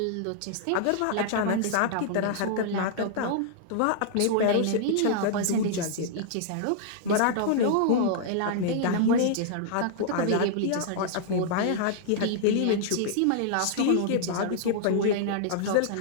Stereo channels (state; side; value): different; both; correlation -0.01